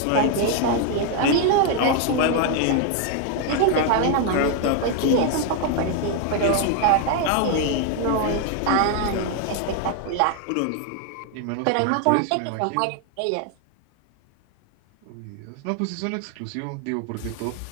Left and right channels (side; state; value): both; different; correlation 0.01